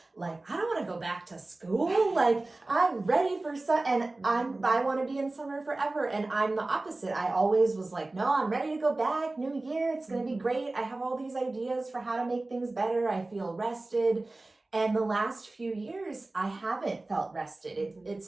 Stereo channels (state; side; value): quieter; left; 3.0 dB